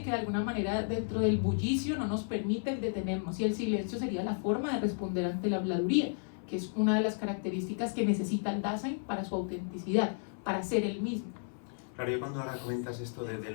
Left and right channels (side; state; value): right; silent; 56 dB below the other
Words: que de alguna manera dentro del bullicio no nos permite detenernos. Y el silencio sería la forma de responder ante la habladuría, que es una de las características que necesita el Dasein para su autenticidad, para ser el mismo. Claro, yo cuando ahora comentas esto